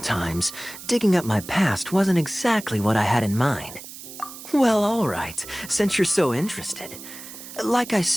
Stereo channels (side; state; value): right; noise; hiss, 14 dB below the sound